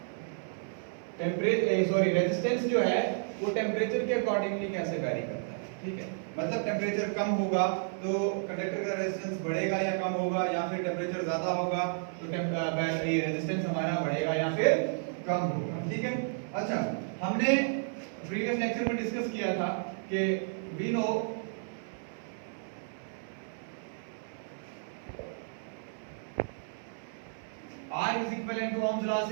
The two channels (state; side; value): silent; left; 56 dB below the other